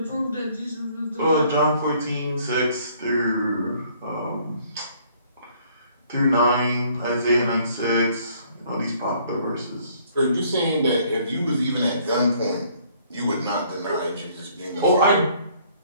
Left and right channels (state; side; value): inverted; both; correlation -0.61